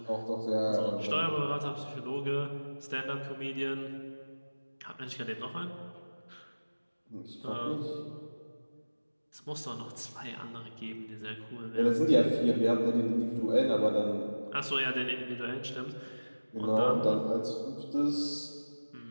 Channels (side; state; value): both; inverted; correlation -1.00